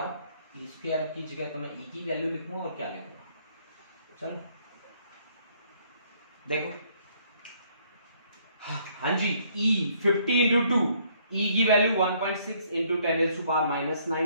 ई स्क्वायर की जगह तो मैं ई की वैल्यू लिखूंगा और क्या लिखूंगा, चलो देखो, हाँ जी, ई 50 इंटू 2, ई की वैल्यू 1.6 इंटू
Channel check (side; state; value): both; inverted; correlation -0.66